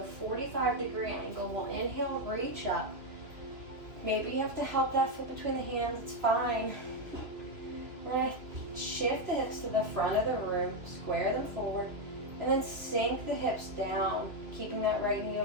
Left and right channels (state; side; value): late; left; 3.0 ms